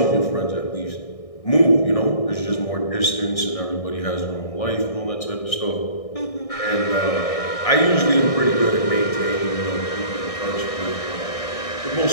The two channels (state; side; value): late; right; 1.6 ms